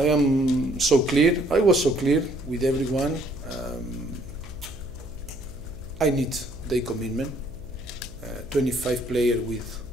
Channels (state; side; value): noise; right; hum, 20 dB below the sound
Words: am so clear. I was so clear with everyone. I need their commitment. 25 players with